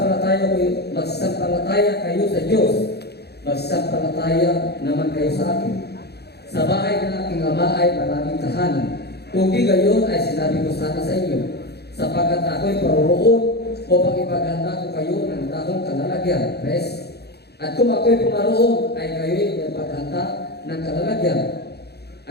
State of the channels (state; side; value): late; right; 0.48 ms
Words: kayo sa Diyos. Magsampalataya naman kayo sa akin. Sa bahay ng aking ama ay maraming tahanan. Kung di gayon ay sinabi ko sana sa inyo, sapagkat ako'y paroroon upang ipaghanda ko kayo ng takong kalalagyan. Rest. At kung ako'y pumaroon ay kayo'y ipaghanda ng kalalagyan.